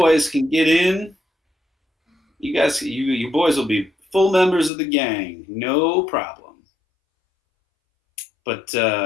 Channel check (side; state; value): right; drops out; at 4.7 s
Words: can get in. You guys, you boys will be full members of the gang, no problem. But